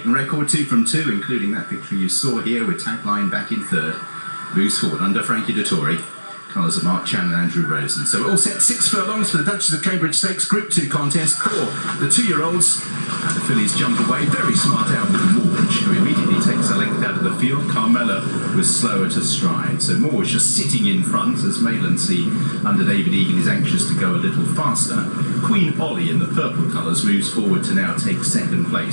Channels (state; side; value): inverted; both; correlation -1.00